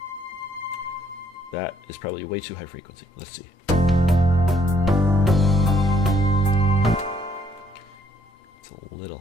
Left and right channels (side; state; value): both; normal; correlation 0.67